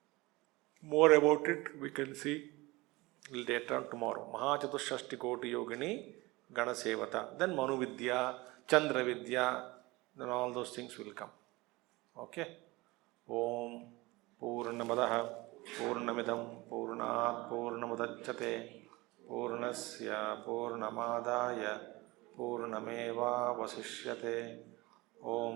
More about it we can see later on tomorrow. Mahachatushashtikoti yogini ganasevata. Then Manu Vidya, Chandra Vidya, then all those things will come. Okay? Om Purnamadaha Purnamidam Purnat Purnamudachyate Purnasya Purnamadaya Purnameva Vasishyate.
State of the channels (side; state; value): left; quieter; 22.1 dB